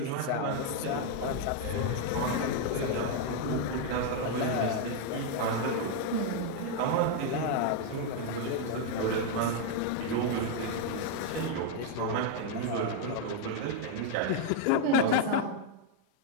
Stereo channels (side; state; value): both; different; correlation 0.00